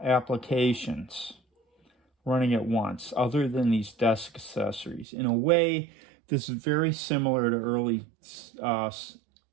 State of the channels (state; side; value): drops out; left; at 5.1 s